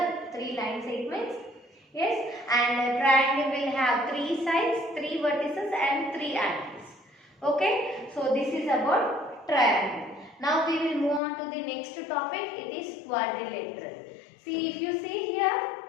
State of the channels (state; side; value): drops out; right; at 11.2 s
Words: 3 line segments. Yes, and a triangle will have 3 sides, 3 vertices and 3 angles. Okay, so this is about triangle. Now we will move on to the next topic. It is quadrilateral. See, if you see here,